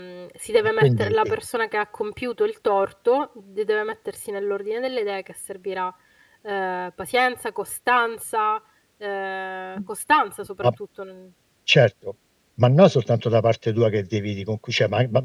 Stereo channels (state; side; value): identical; both; correlation 1.00